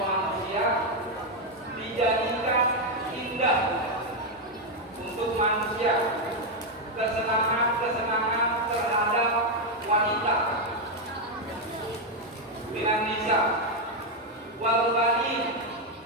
manusia dijadikan indah untuk manusia kesenangan-kesenangan terhadap wanita dengan nisa wal banin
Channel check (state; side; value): normal; both; correlation 0.03